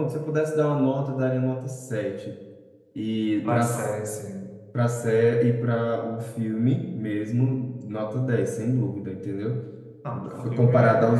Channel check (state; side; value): identical; both; correlation 1.00